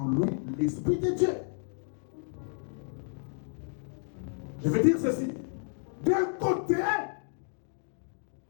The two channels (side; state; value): right; silent; digital silence